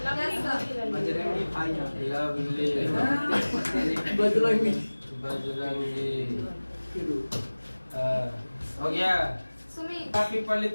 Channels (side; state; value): both; inverted; correlation -1.00